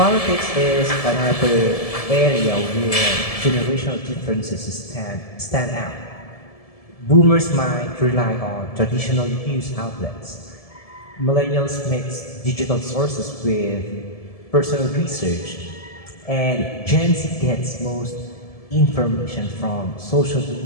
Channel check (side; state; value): right; late; 1.7 ms